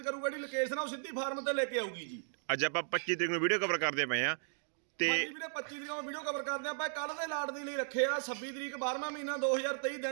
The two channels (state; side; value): silent; left; digital silence